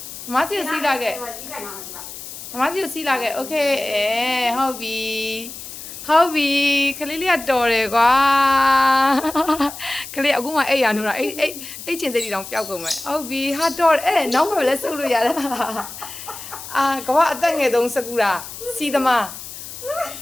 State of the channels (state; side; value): noise; left; hiss, 12 dB below the sound